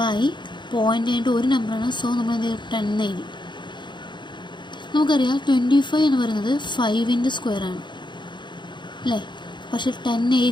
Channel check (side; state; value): right; late; 0.22 ms